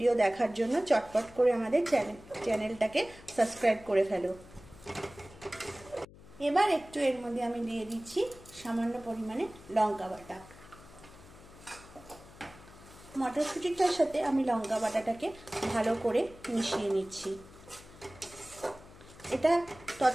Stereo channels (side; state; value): left; noise; hum, 20 dB below the sound